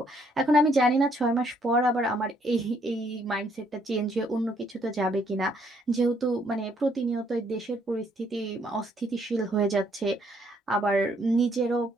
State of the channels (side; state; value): both; normal; correlation 0.68